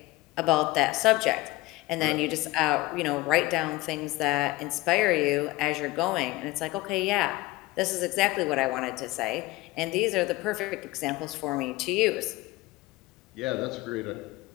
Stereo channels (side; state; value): right; quieter; 19.8 dB